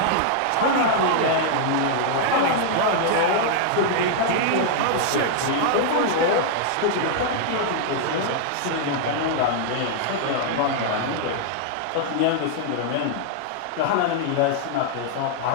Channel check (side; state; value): both; different; correlation -0.01